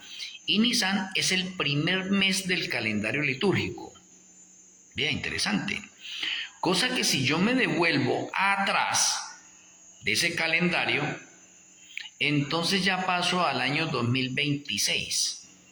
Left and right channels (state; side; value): identical; both; correlation 1.00